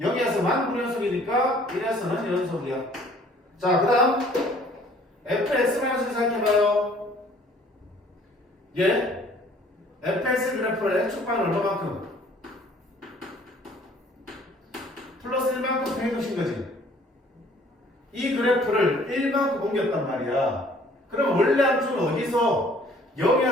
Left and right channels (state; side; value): normal; both; correlation 0.56